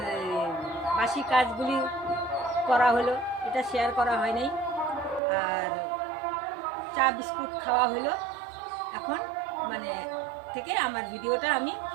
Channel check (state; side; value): drops out; left; at 5.2 s